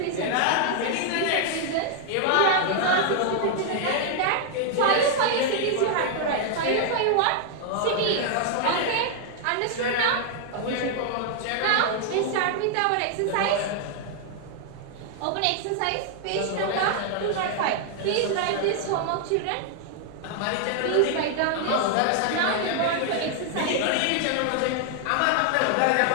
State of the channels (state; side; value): different; both; correlation 0.00